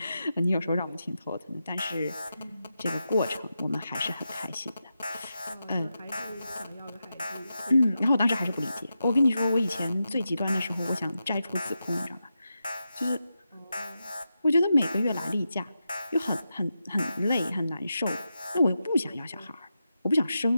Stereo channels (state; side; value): inverted; both; correlation -0.89